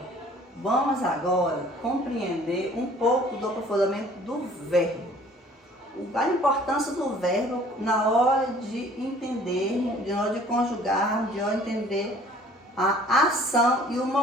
vamos agora compreender um pouco do aprofundamento do verbo. A importância do verbo na hora de entender, na hora de conjugar, de hora de entender a ação e o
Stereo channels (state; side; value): normal; both; correlation 0.53